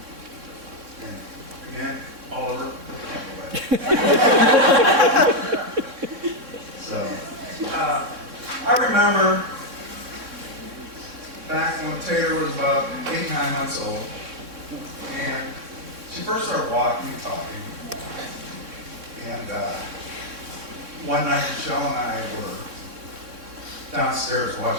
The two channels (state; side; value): late; left; 3.6 ms